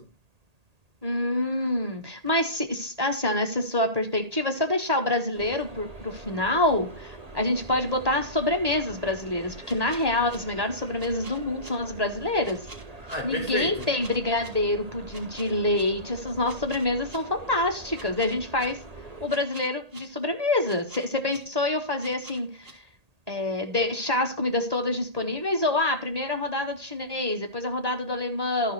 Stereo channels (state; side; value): late; left; 1.8 ms